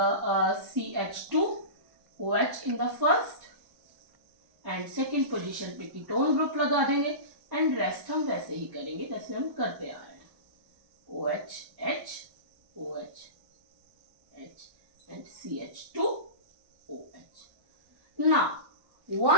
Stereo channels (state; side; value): late; left; 1.1 ms